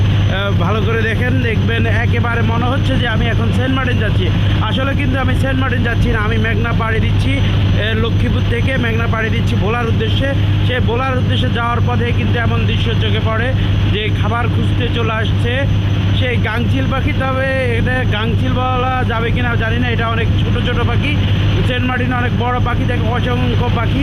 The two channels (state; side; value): identical; both; correlation 1.00